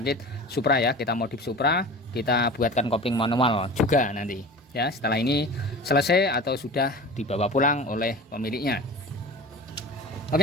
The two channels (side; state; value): both; normal; correlation 0.36